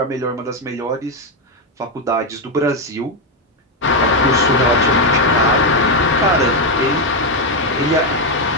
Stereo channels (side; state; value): both; normal; correlation 0.05